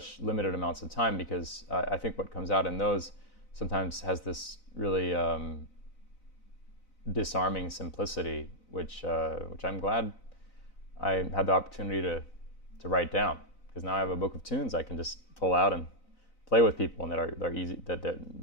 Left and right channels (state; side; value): late; right; 4.0 ms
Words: limited amounts of time, because I think what comes out in those sometimes has this really disarming simplicity, which I'm glad I had the opportunity to write down, because now I have a book of tunes I can just pull out and play with people, and that